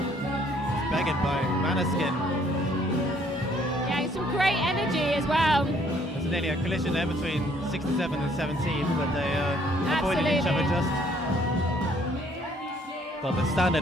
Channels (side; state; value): both; normal; correlation 0.63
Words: It's begged by Maneskin. Yeah, some great energy as well. There's nearly a collision there between 67 and 17, but they avoided each other Absolutely. just. God, the standard